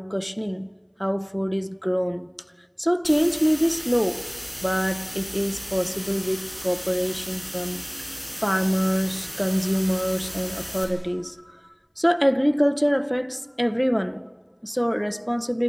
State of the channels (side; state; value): both; identical; correlation 1.00